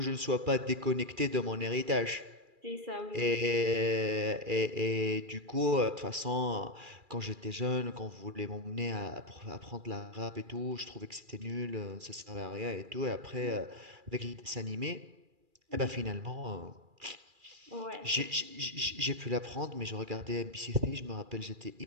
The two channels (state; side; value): late; left; 2.4 ms